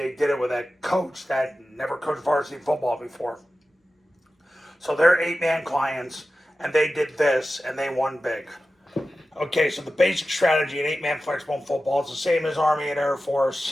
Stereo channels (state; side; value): normal; both; correlation 0.94